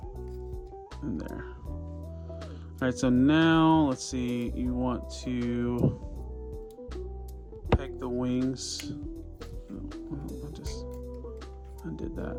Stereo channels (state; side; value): identical; both; correlation 1.00